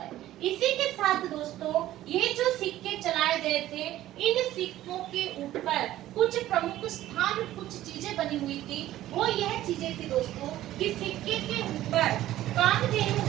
इसी के साथ दोस्तों ये जो सिक्के चलाए गए थे, इन सिक्कों के ऊपर कुछ प्रमुख स्थान, कुछ चीजें बनी हुई थी। वो यह चीजें थी दोस्तों कि सिक्के के ऊपर कामधेनु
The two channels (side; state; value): left; quieter; 14.2 dB